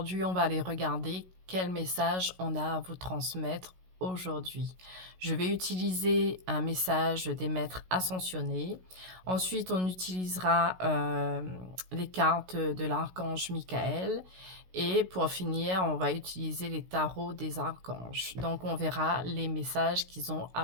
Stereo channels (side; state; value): left; late; 16 ms